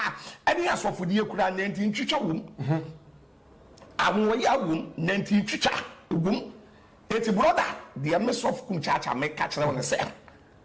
ene asofodi ekura 19 twitwa wom anwo ya wom 19 twitwa wom eti brother the mess of Kumchacha make catch na say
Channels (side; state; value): both; identical; correlation 1.00